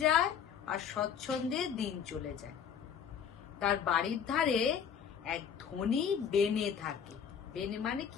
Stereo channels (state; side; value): quieter; right; 7.7 dB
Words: যায় আর স্বচ্ছন্দে দিন চলে যায়। তার বাড়ির ধারে এক ধনী বেনে থাকে। বেনে মানে